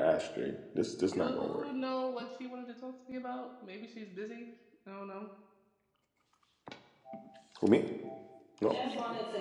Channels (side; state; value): both; identical; correlation 1.00